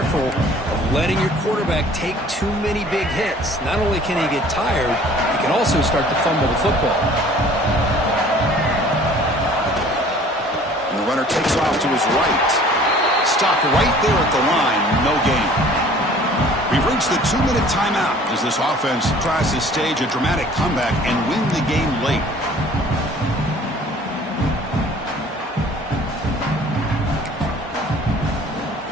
of letting your quarterback take too many big hits. Not only can he get tired, he can also start to fumble the football. And the runner takes off to his right. Stopped right there at the line. No gain. We've reached the 2-minute timeout as this offense tries to stage a dramatic comeback and win the game late.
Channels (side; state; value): both; normal; correlation 0.51